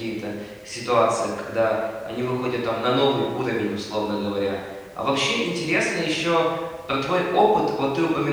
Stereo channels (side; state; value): both; identical; correlation 1.00